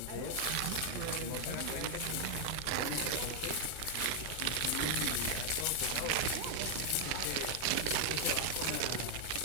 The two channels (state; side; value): different; both; correlation 0.00